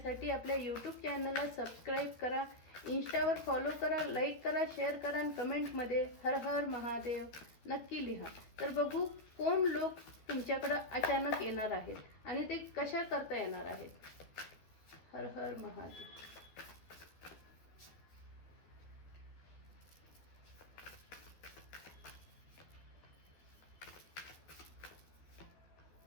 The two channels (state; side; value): late; right; 13 ms